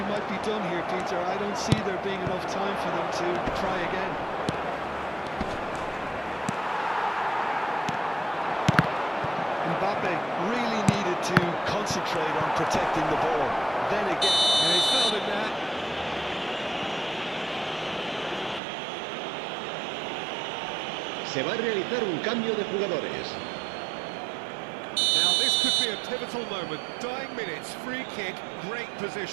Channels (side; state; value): left; drops out; at 18.6 s